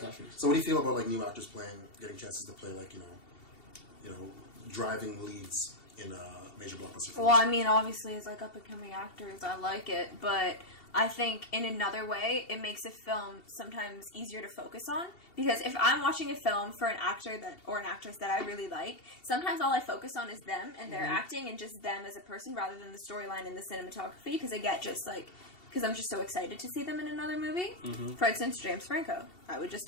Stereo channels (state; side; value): late; right; 2.7 ms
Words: not Phoenix. So what do you feel about like new actors getting chances to play like driving leads in a major blockbuster film? Well, I mean, obviously, as like up and coming actors, I like it, but I think in another way, it makes a film sometimes easier to focus on. Because if I'm watching a film for an actor or an actress that I really like, sometimes all I focus on is them and their acting and just them as a person rather than the storyline and the cinematography. Because I get because I'm just so excited to see them in another movie. For instance, James Franco. I would just